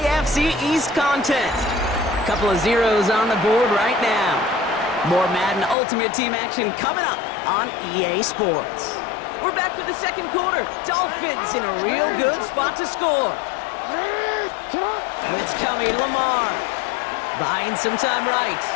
East contest. A couple of zeros on the board right now. More Madden Ultimate Team action coming up on EA Sports. We're back for the 2nd quarter. Dolphins in a real good spot to score. Blitz coming, Lamar. Buying some time right.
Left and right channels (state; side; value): drops out; right; at 5.8 s